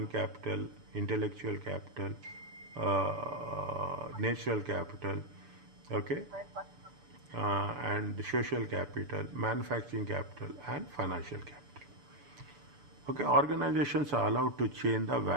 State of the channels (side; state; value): left; late; 6.9 ms